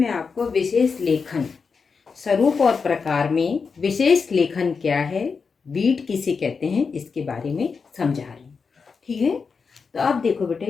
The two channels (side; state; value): right; quieter; 5.2 dB